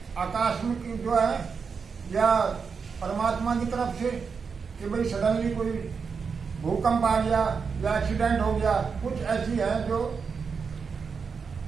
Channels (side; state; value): left; quieter; 5.6 dB